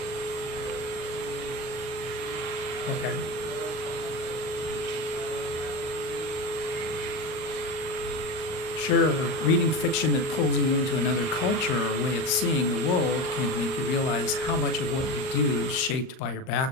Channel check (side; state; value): right; late; 38 ms